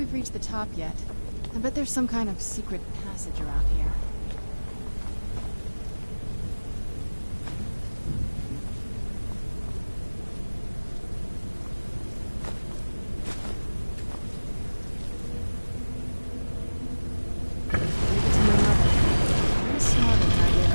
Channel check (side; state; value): both; inverted; correlation -1.00